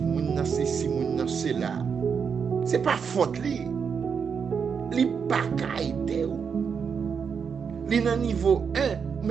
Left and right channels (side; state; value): left; quieter; 6.4 dB